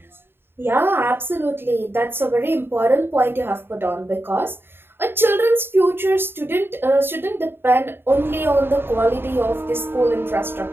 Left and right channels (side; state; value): left; late; 0.11 ms